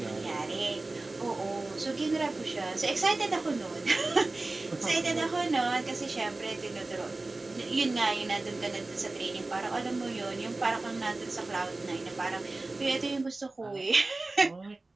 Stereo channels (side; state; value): left; quieter; 3.1 dB